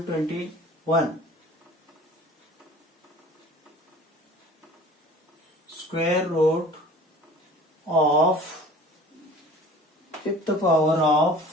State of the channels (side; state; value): both; normal; correlation 0.44